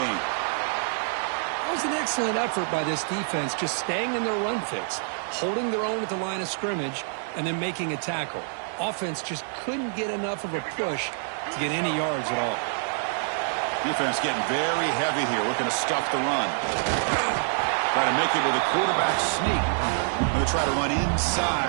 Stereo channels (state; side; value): silent; left; 61 dB below the other